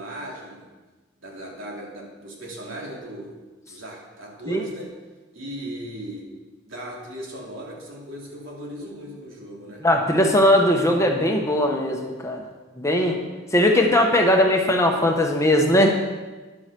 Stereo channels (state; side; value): normal; both; correlation 0.44